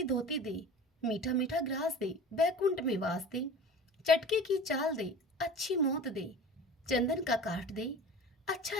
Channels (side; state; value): both; normal; correlation 0.38